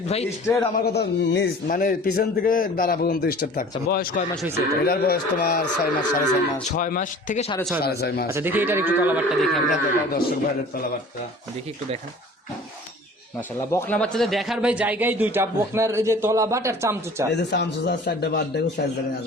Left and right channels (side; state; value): both; normal; correlation 0.45